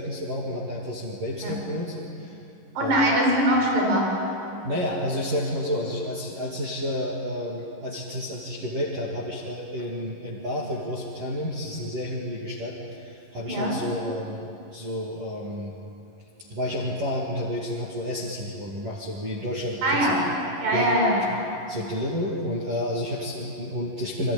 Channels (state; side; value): late; left; 11 ms